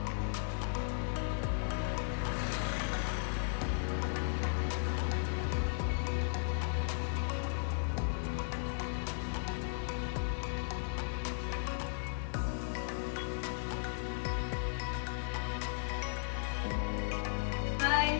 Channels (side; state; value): right; silent; digital silence